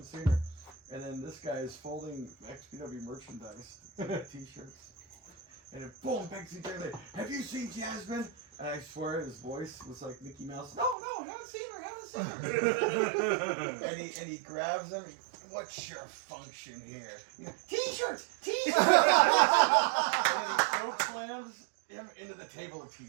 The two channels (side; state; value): left; drops out; at 11.0 s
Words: seen her. And then this guy is folding XPW merchandise, t-shirts. And then boom, Bexy Taylor, have you seen Jasmine? And I swear his voice was like Mickey Mouse. No, haven't seen her. and he grabs him. What's your function here? T-shirts. And then he choke slams him into the table of